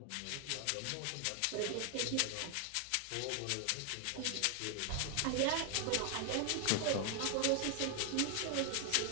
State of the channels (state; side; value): different; both; correlation 0.00